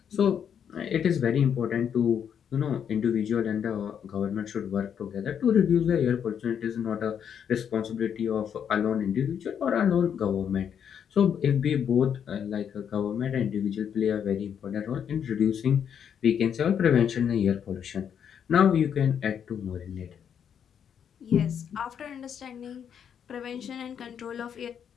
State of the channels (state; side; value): quieter; right; 8.2 dB